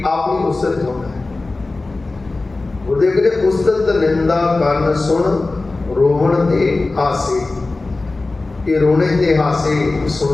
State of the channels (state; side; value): quieter; right; 3.3 dB